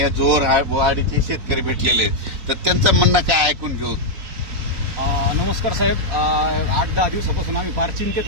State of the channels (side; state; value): left; late; 4.0 ms